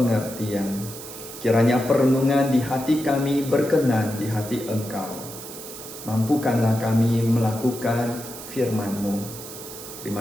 Kiranya perenungan di hati kami berkenan di hati Engkau. Mampukanlah kami melakukan firman-Mu.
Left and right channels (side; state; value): right; noise; hiss, 12 dB below the sound